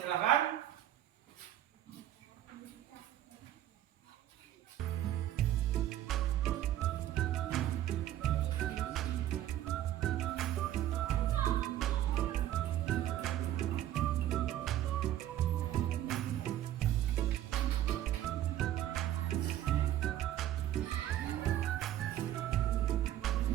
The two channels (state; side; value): quieter; left; 12.4 dB